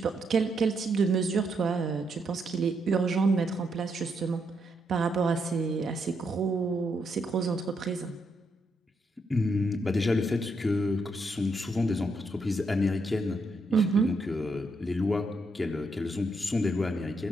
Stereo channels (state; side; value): normal; both; correlation 0.78